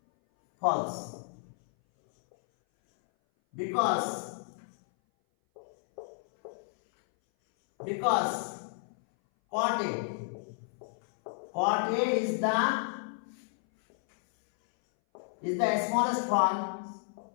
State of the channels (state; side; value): silent; right; 57 dB below the other